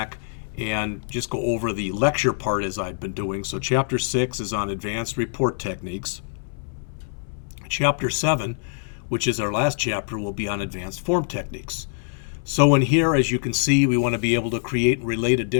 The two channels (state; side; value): silent; right; 62 dB below the other